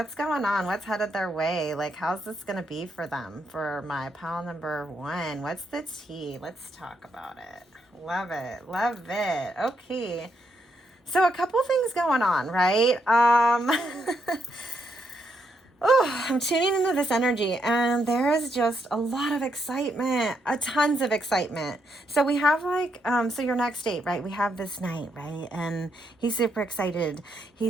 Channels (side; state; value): both; normal; correlation 0.78